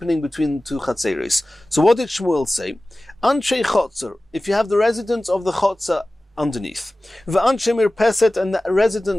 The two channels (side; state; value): both; normal; correlation 0.97